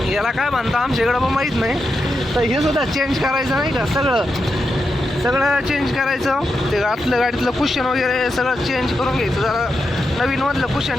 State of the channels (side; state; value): both; normal; correlation 0.87